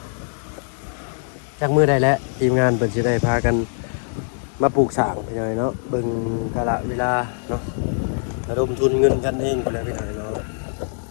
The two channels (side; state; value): right; silent; 64 dB below the other